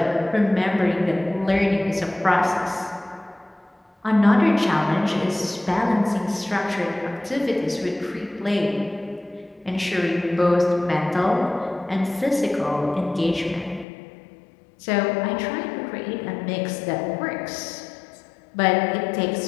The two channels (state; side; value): drops out; right; at 13.9 s